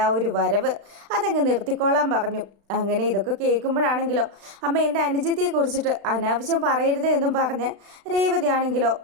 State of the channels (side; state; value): left; late; 36 ms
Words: ആ ഒരു വരവ് അതങ്ങ് നിർത്തിക്കോളാൻ പറഞ്ഞു. അങ്ങനെ ഇതൊക്കെ കേൾക്കുമ്പോഴാണെങ്കിലോ അമ്മ എൻ്റെ അനുജത്തിയെ കുറിച്ചിട്ട് അനാവശ്യം പറയരുത് എന്നും പറഞ്ഞ് രേവതി ആണെങ്കിലോ